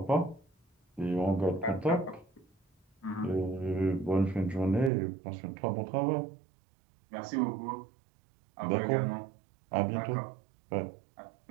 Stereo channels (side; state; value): left; drops out; at 4.9 s